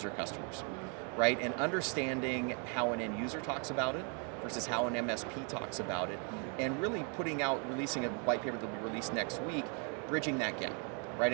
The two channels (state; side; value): quieter; left; 38.6 dB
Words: customers, right? And understanding how an end user talks about it versus how an MSP talks about it, and really releasing a white paper that will be released next week, bridging that gap, right?